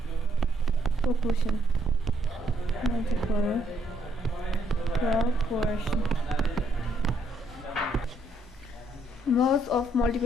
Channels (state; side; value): normal; both; correlation 0.72